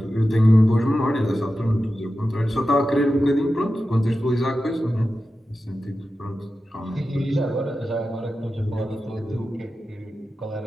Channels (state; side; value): normal; both; correlation 0.92